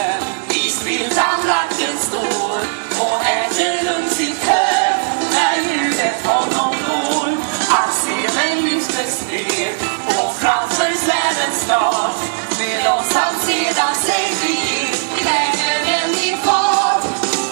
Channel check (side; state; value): left; silent; digital silence